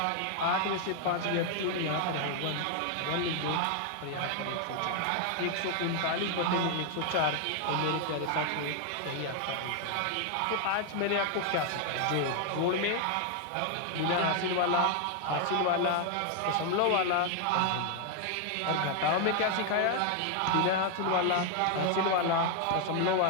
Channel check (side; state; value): both; different; correlation 0.00